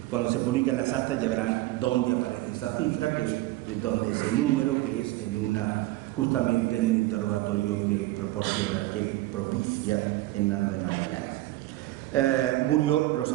Cuando se publican las actas ya verán dónde aparece esa cifra, que es donde ese número, que es justamente en un interrogatorio que propicia Hernando de Magallanes. Murió, lo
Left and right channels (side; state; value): left; quieter; 17.8 dB